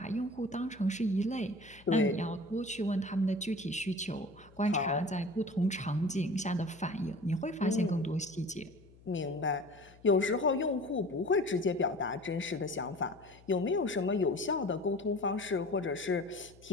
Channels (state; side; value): noise; left; hum, 24 dB below the sound